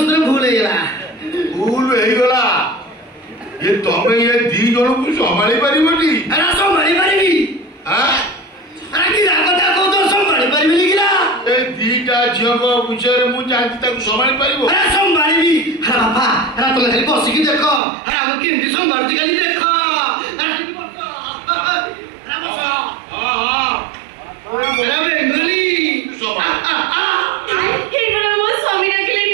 ଭୁଲ ହେଇଗଲା ଭୁଲ ହେଇଗଲା ଏ ତମେ ଏ ଦି ଜଣକୁ ସମ୍ଭାଳି ପାରିବନି ସମ୍ଭାଳି ପାରିବି କି ରାଗଟା କହୁଛ ସମ୍ଭାଳି ପାରିବିନି କିରା ଏ ଦିଟା ଝିଅଙ୍କ ବିଷୟରେ ମୁଁ ଜାଣିଛି ତାକୁ ସମ୍ଭାଳି ପାରିବ ସମ୍ଭାଳିବି ବାପା ତମେ ଖାଲି ବସିକି ଦେଖ ଆମେ କେମିତି ସମ୍ଭାଳୁଛି ଖାଲି ଦେଖ ବେଙ୍ଗଲି ମୋ ସ୍ୱାମୀ ଡାକିଲେଣି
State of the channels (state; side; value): drops out; left; at 17.8 s